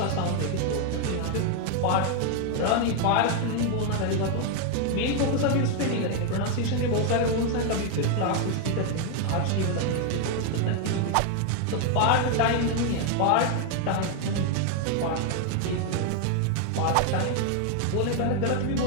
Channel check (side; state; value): both; different; correlation 0.01